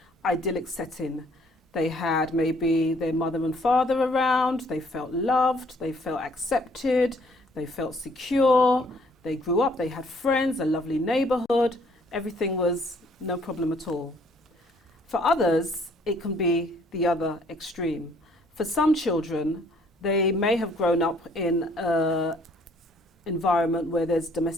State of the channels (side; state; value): both; normal; correlation 0.62